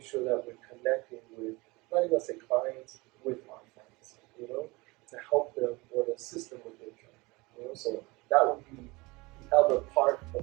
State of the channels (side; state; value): left; quieter; 24.0 dB